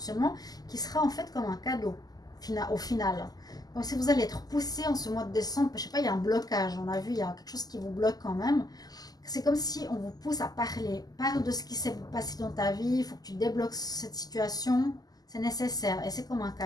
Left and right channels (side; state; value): right; late; 0.18 ms